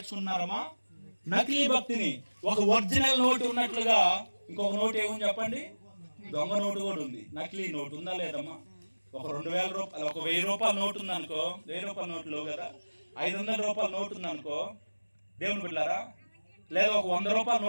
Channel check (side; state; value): both; inverted; correlation -1.00